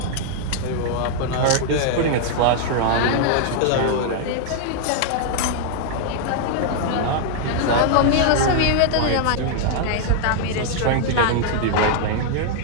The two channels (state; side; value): different; both; correlation -0.01